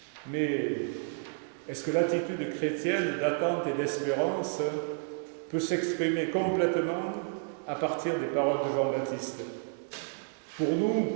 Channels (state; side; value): silent; left; 57 dB below the other